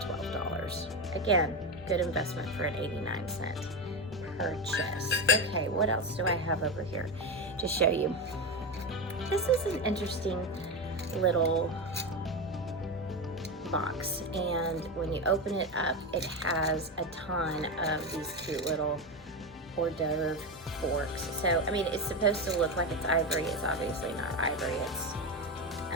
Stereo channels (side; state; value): both; normal; correlation 0.16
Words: $12. Again, good investment for an 89-cent purchase. Okay, what else do I have over here to show you? This is an interesting little box, and when you open it up, it has a ton of these cute little hors d'oeuvre forks. So, I mean, it's supposed to look like it's ivory. It's obviously not ivory. It's